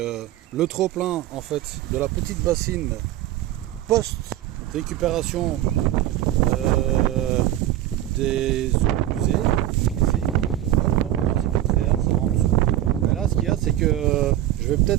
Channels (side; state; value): left; quieter; 13.3 dB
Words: trop-plein en fait de la petite bassine post récupération des eaux usées. Ici. Hop, c'est filtré, hein, ça va en dessous. Mais là, ce qu'il y a, c'est que je vais